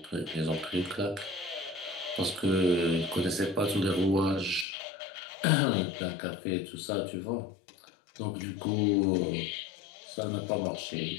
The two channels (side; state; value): right; drops out; at 4.7 s